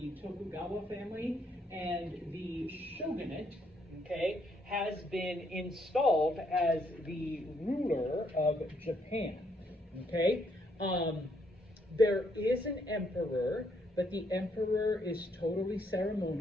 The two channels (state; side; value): normal; both; correlation 0.72